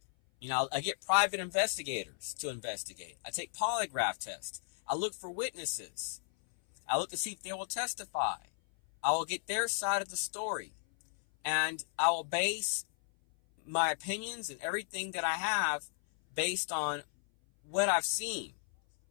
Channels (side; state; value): right; silent; 55 dB below the other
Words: I get private investigators to investigate. I take polygraph tests. I look for witnesses. I look to see if they will testify. I will get their side of the story. And I will base my opinions and everything that I have based on what I've seen,